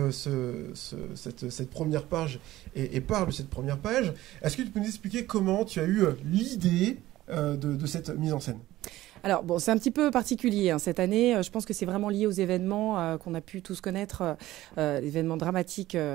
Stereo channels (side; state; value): left; quieter; 15.8 dB